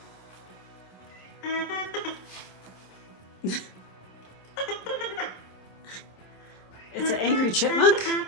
It's an angry chipmunk.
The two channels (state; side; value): late; right; 27 ms